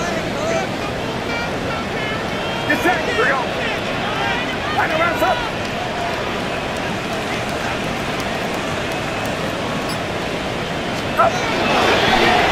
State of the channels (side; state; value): both; identical; correlation 1.00